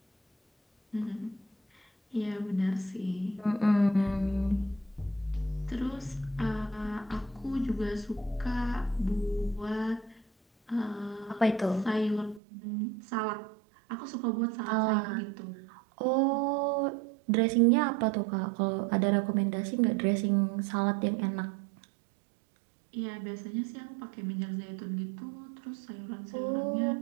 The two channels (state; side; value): drops out; left; at 12.4 s